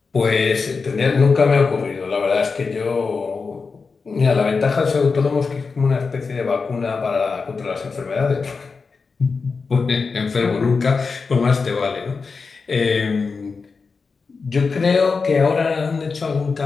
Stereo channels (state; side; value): quieter; right; 4.7 dB